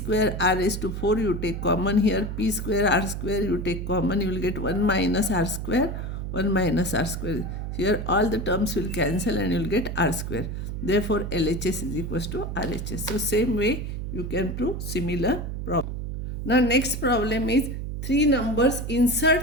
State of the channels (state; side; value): noise; right; hum, 5 dB below the sound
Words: r raised to 4 you take common here. P square r square you take common. You will get 1 minus r square, 1 minus r square. Here all the terms will cancel and you will get r square. Therefore, LHS is equals to RHS. So, same way you can prove similar problem. Now, next problem is three numbers.